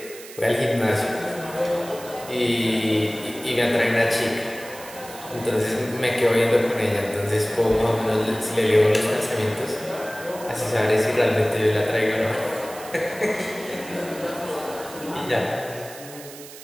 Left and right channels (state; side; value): noise; right; hiss, 16 dB below the sound